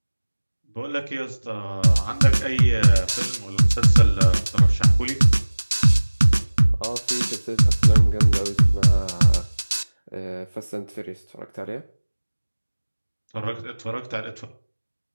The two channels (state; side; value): inverted; both; correlation -1.00